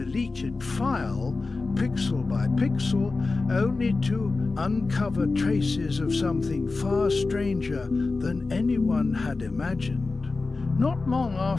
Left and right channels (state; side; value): quieter; right; 3.7 dB